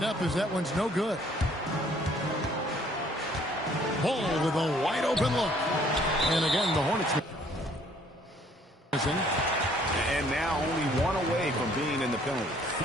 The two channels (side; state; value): both; normal; correlation 0.60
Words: up as that one's no good. Ball with a wide open look. And again, the Hornets missing. And now only one away from being in the penalty.